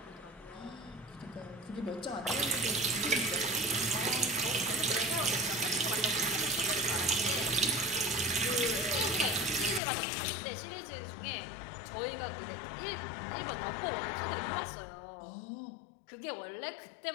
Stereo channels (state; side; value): drops out; right; at 9.8 s